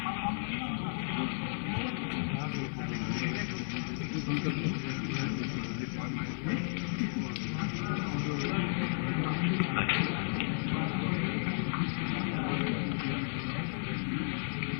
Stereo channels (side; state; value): right; silent; 55 dB below the other